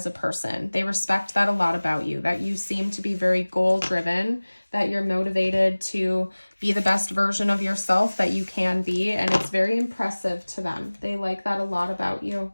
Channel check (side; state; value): both; inverted; correlation -1.00